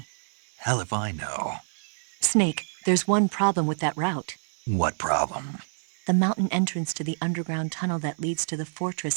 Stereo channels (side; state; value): left; silent; 60 dB below the other